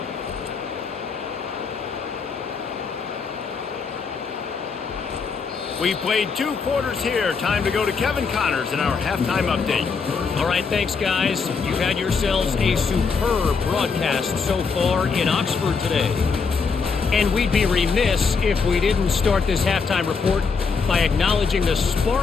We've played 2 quarters here. Time to go to Kevin Connors in our halftime update. All right, thanks, guys. You've had yourselves a superb broadcast so far in Oxford today. And we'd be remiss if we didn't start this halftime report by acknowledging the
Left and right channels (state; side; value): quieter; right; 5.2 dB